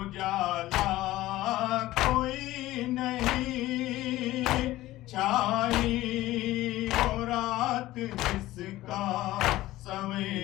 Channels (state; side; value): quieter; right; 16.5 dB